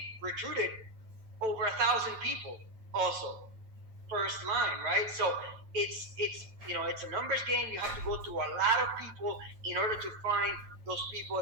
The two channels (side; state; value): left; late; 9.1 ms